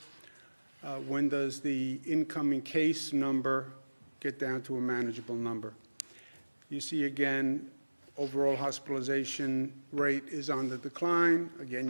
When does the incoming case number get down to a manageable number? You see again, overall hospitalization rate is on the decline.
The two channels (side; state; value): both; inverted; correlation -1.00